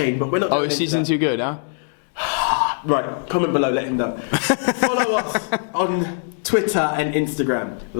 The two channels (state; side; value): silent; right; digital silence